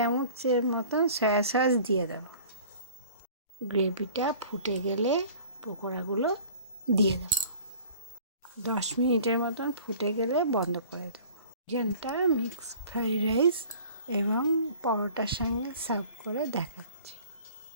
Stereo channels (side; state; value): both; inverted; correlation -0.47